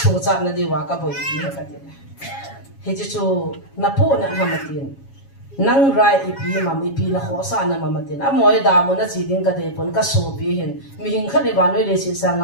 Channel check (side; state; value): right; late; 7.3 ms